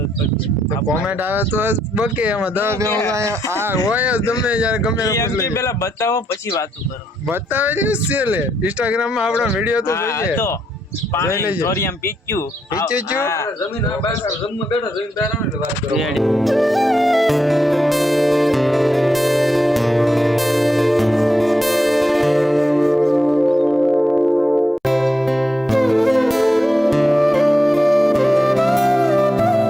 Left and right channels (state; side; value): normal; both; correlation 0.81